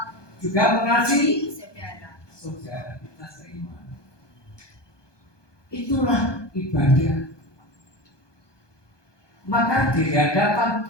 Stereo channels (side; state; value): right; late; 1.2 ms